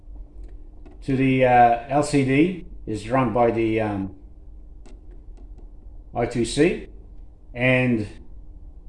to the LCD is run by the I2C, and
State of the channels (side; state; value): both; identical; correlation 1.00